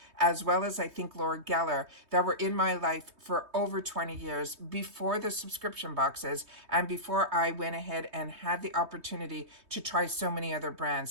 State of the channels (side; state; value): left; late; 3.2 ms